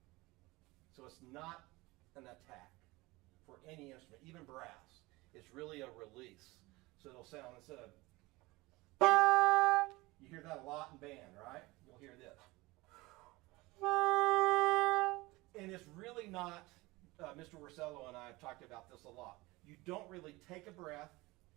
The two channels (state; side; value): quieter; left; 21.7 dB